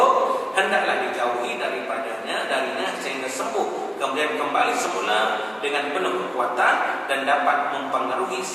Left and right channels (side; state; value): both; identical; correlation 1.00